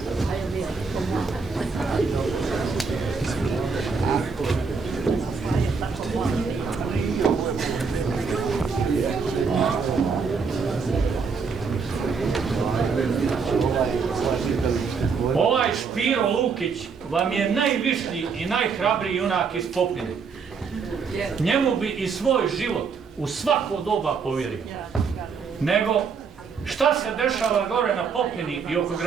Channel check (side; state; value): left; quieter; 5.4 dB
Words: Ovaj Špiro Lukić vam je najvišnji i najhrabriji junak iz Popine. Njemu bi i svoj život u svako doba povjerio. Nego, šta se dešava gore na Popini i oko